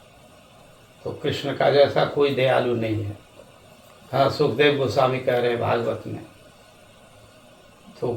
तो कृष्ण का जैसा कोई दयालु नहीं है। हाँ, सुखदेव गोस्वामी कह रहे हैं भागवत में। तो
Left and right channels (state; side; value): identical; both; correlation 1.00